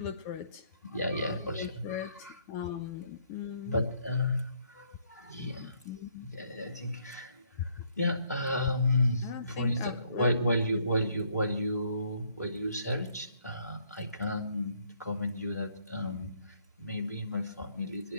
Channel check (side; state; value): both; inverted; correlation -0.68